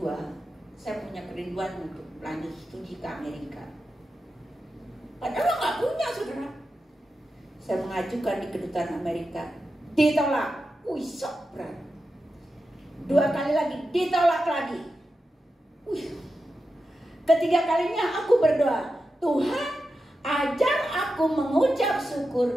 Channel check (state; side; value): normal; both; correlation 0.90